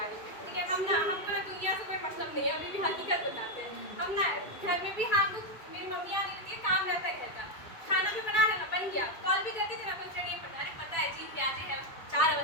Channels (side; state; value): right; late; 2.6 ms